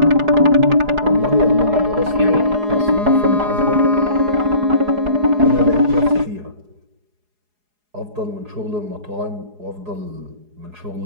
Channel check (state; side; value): late; left; 4.8 ms